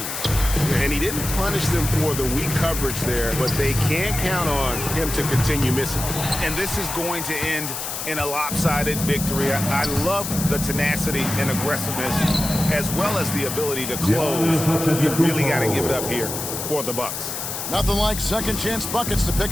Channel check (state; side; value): noise; left; hiss, 5 dB below the sound